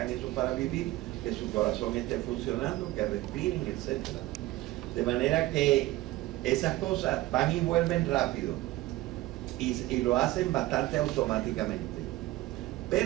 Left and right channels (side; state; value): left; quieter; 17.4 dB